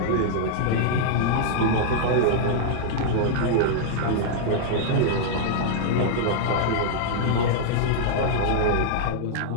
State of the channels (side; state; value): both; different; correlation -0.01